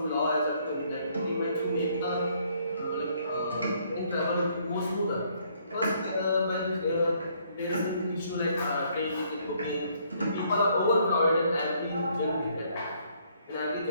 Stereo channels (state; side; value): inverted; both; correlation -0.67